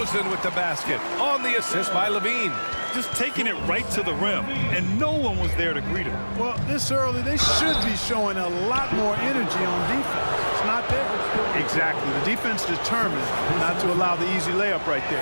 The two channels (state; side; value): inverted; both; correlation -1.00